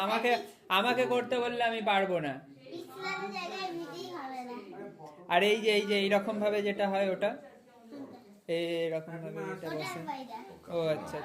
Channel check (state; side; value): identical; both; correlation 1.00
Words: আমাকে আমাকে করতে বললে আমি পারবো না। ইসলামের জায়গায় এমনিতেই হবে না। আর এই যে এইরকম ভাবে যেটা হয় ওটা, এইরকম ভাবে যেটা ওটার বসে। বাইরে। ও আচ্ছা